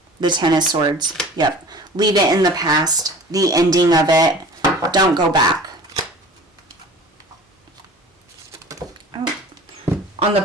The Ten of Swords. Yep. Leave it in the past. The ending of it. Don't go back. Oh. On the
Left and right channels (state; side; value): normal; both; correlation 0.42